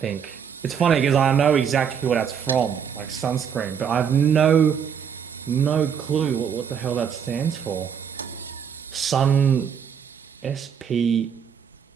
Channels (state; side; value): quieter; left; 7.6 dB